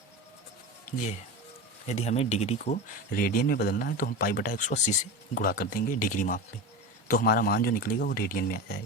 ये है, यदि हमें डिग्री को रेडियन में बदलना है तो हम π/180 से गुणा कर देंगे डिग्री माप में, तो हमारा मान जो निकलेगा वो रेडियन में आ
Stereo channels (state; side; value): normal; both; correlation 0.25